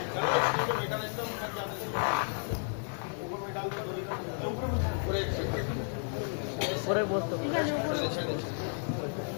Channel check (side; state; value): right; silent; 56 dB below the other